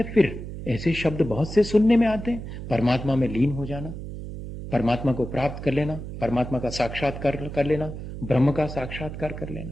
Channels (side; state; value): right; noise; hum, 9 dB below the sound